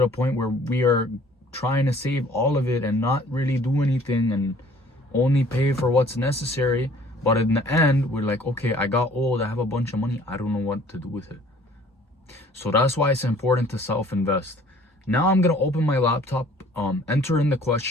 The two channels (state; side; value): normal; both; correlation 0.54